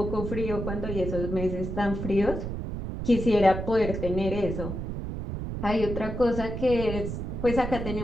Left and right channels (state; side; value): noise; right; rumble, 5 dB below the sound